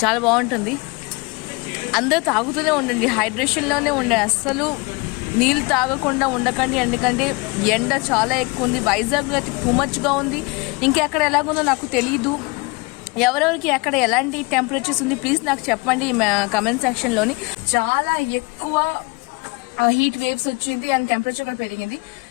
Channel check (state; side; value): quieter; right; 27.1 dB